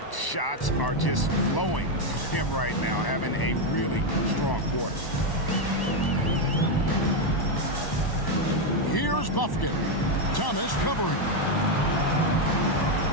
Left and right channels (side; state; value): right; late; 1.1 ms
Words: Shots are just flowing him right now, having a really strong quarter. Here's Buffkin. Thomas covering.